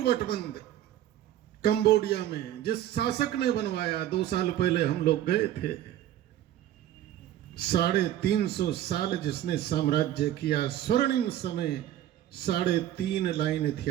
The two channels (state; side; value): quieter; left; 12.3 dB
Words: वटबंध कंबोडिया में जिस शासक ने बनवाया, 2 साल पहले हम लोग गए थे। 350 साल जिसने साम्राज्य किया, स्वर्णिम समय 3.5 लाइन